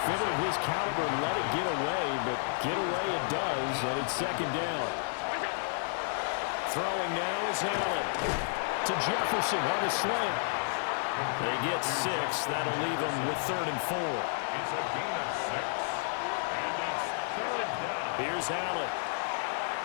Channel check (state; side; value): silent; right; digital silence